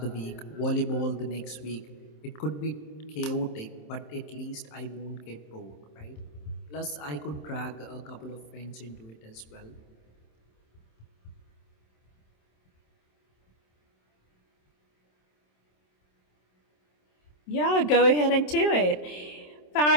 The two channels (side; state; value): right; late; 27 ms